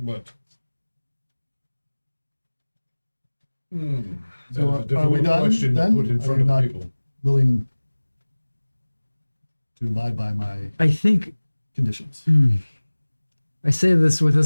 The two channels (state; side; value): inverted; both; correlation -1.00